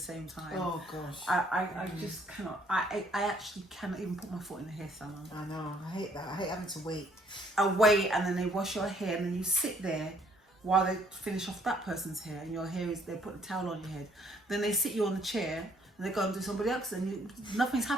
time. Oh gosh. I just cannot. I actually cannot even put my foot in the hair salon. I know. I hate that. I hate having to wait. I wait, and then they wash your hair, and then you sit there while they finish off that person's hair, and your hair is. They put a towel on your head. Then they sit you on the chair. And they go and do somebody else, and nothing's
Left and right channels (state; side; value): normal; both; correlation 0.64